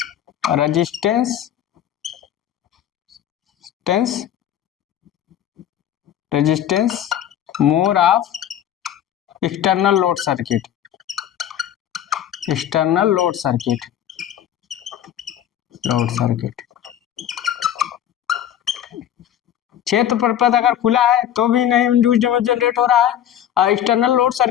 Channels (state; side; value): quieter; right; 10.7 dB